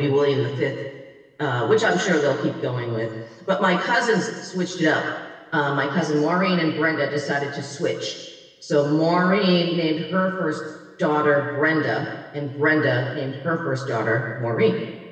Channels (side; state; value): both; identical; correlation 1.00